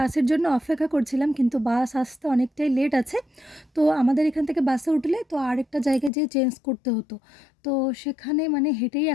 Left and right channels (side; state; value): right; drops out; at 6.1 s